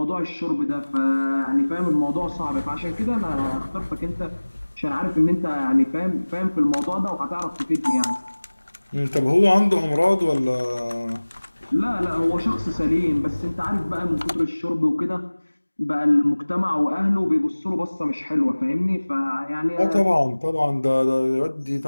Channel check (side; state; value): both; inverted; correlation -1.00